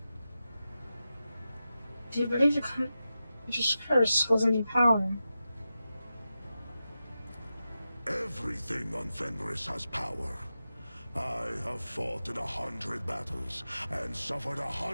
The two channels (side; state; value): both; inverted; correlation -0.91